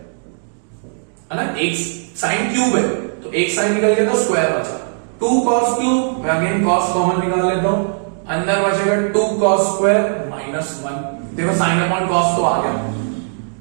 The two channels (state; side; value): silent; left; digital silence